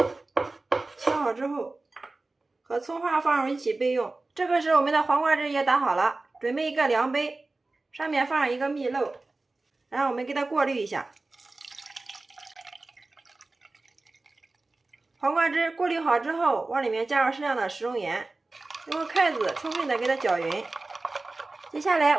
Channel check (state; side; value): quieter; left; 3.3 dB